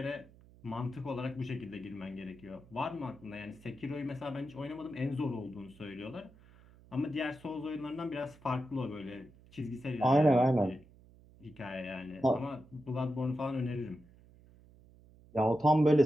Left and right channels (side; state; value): right; noise; hum, 25 dB below the sound